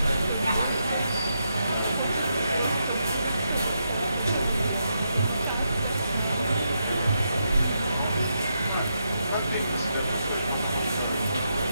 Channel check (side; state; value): both; inverted; correlation -0.83